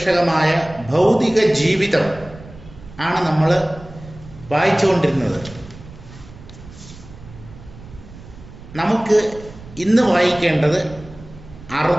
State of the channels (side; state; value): right; noise; rumble, 18 dB below the sound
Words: ഭൗതിക ജീവിതം ആണ് നമ്മൾ വായിച്ചുകൊണ്ടിരുന്നത്. നമുക്ക് ഇന്ന് വായിക്കേണ്ടത്